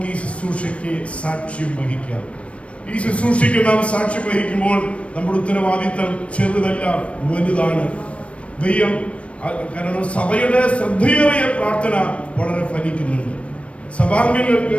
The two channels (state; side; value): late; right; 0.062 ms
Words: ഈ ശുശ്രൂഷയ്ക്ക് സാക്ഷ്യം വഹിക്കാം. ഈ ശുശ്രൂഷയ്ക്ക് നാം സാക്ഷ്യം വഹിക്കുമ്പോൾ നമ്മുടെ ഉത്തരവാദിത്തം ചെറുതല്ല, വലുതാണ്. ദൈവം കാരണം സഭയുടെ ശ്രദ്ധയേറിയ പ്രാർത്ഥന വളരെ ഫലിക്കുന്നുണ്ട്. സഭാംഗങ്ങൾക്ക്